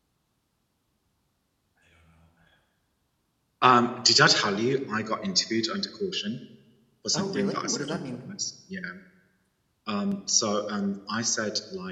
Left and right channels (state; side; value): identical; both; correlation 1.00